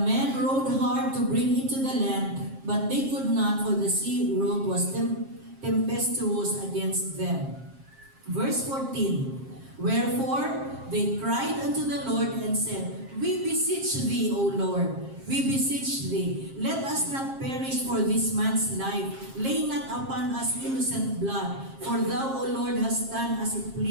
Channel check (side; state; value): left; late; 7.5 ms